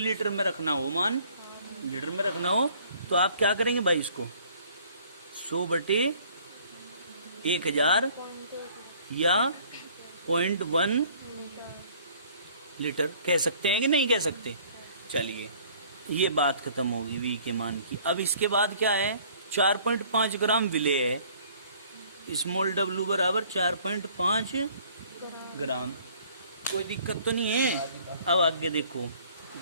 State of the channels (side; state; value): both; inverted; correlation -0.56